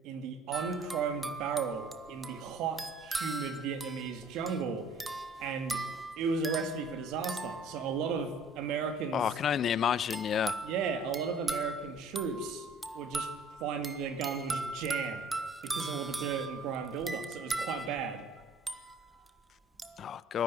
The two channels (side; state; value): both; normal; correlation 0.52